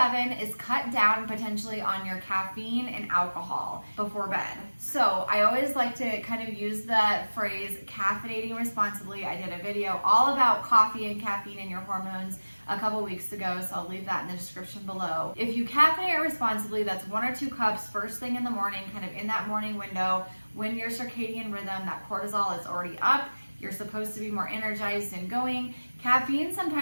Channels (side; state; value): both; inverted; correlation -1.00